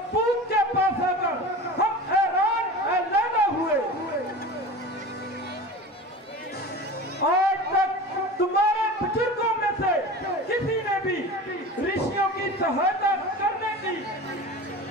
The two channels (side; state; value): both; normal; correlation 0.34